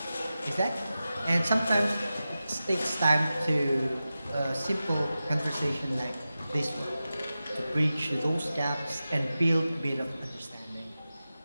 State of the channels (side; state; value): both; inverted; correlation -0.94